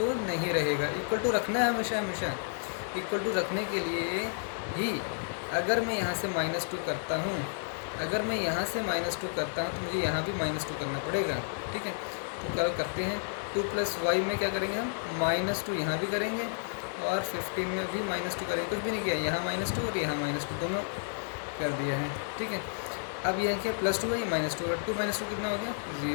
नहीं रहेगा। इक्वल टू रखना है हमेशा। इक्वल टू रखने के लिए ही अगर मैं यहाँ से -2 करता हूँ, अगर मैं यहाँ से -2 करता हूँ तो मुझे यहाँ भी -2 करना पड़ेगा, ठीक है। तो क्या करते हैं, 2 + y में क्या करेंगे हम, -2 यहाँ भी करेंगे और 15 में भी -2 करेंगे। कुछ भी नहीं किया, यहाँ -2 और यहाँ -2 दोनों कर दिया है, ठीक है। अब यह क्या +2 है, ये -2 है, 2 - 2 कितना हो गया,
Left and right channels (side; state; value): right; silent; digital silence